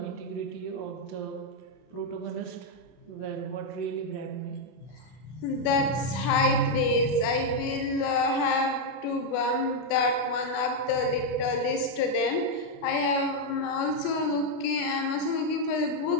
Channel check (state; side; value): late; right; 32 ms